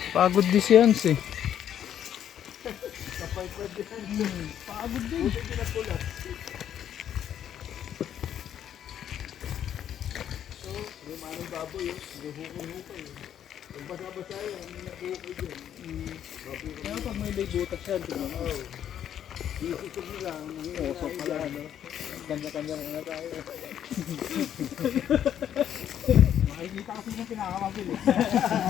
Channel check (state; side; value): quieter; right; 9.9 dB